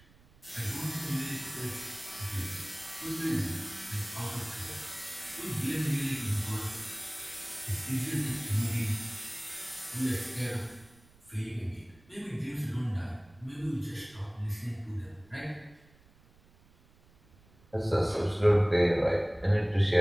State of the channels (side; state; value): right; noise; rumble, 28 dB below the sound